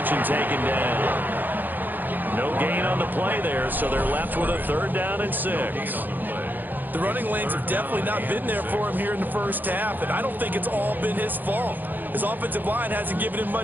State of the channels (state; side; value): late; left; 0.088 ms